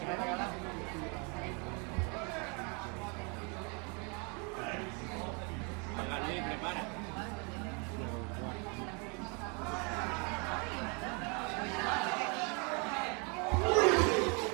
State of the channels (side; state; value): left; quieter; 34.0 dB